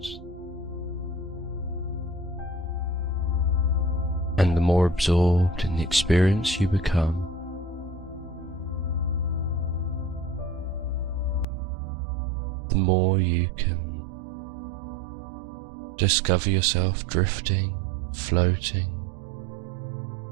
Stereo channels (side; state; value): left; drops out; at 11.5 s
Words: And the more absorbed in the experience you become, the more you can discover yourself drifting, floating,